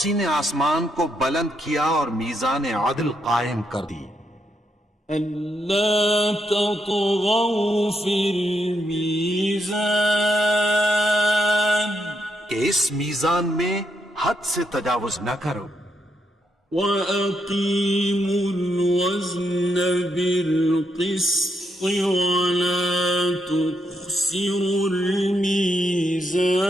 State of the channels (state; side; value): normal; both; correlation 0.79